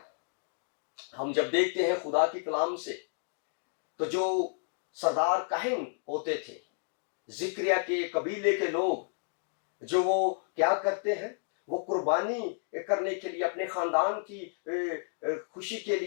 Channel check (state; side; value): silent; right; digital silence